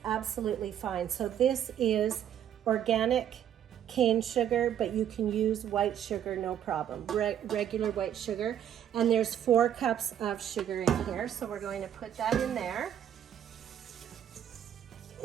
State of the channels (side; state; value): left; quieter; 10.1 dB